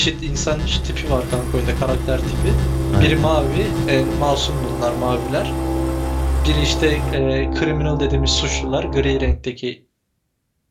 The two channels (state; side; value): identical; both; correlation 1.00